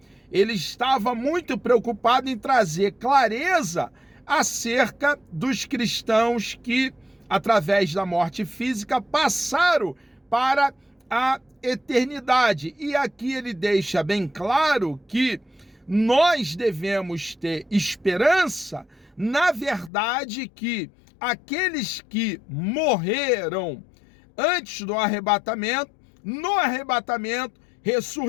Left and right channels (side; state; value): right; drops out; at 19.9 s